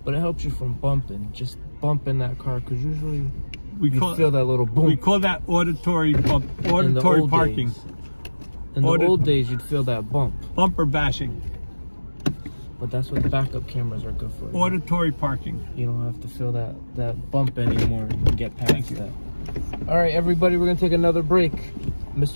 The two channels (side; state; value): both; inverted; correlation -1.00